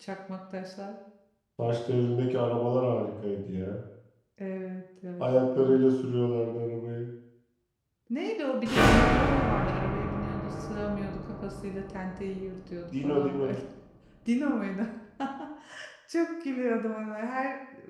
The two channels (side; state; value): both; identical; correlation 1.00